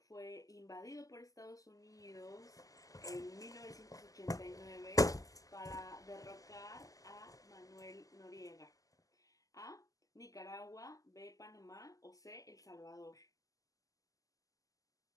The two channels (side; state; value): right; late; 0.17 ms